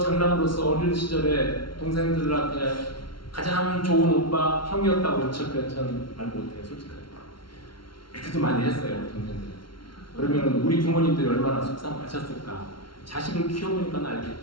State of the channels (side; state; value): right; late; 0.73 ms